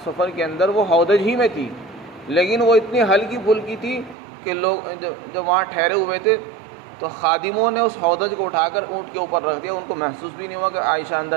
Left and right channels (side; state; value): left; drops out; at 4.2 s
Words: سفر کے اندر وہ ہودج ہی میں تھی، لیکن وہ اتنی ہلکی پھلکی تھی کہ لوگ جب وہاں ٹھہرے ہوئے تھے تو خادموں نے اس ہودج کو اٹھا کر اونٹ کے اوپر رکھ دیا، ان کو محسوس بھی نہیں ہوا کہ عائشہ